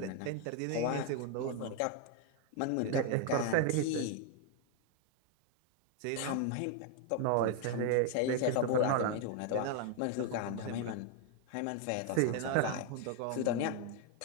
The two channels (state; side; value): different; both; correlation 0.01